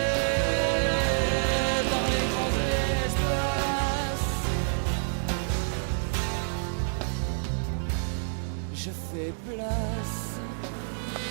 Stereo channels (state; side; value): silent; left; digital silence